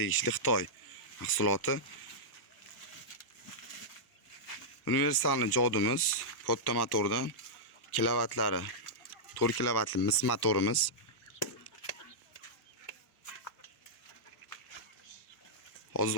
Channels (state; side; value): late; right; 1.1 ms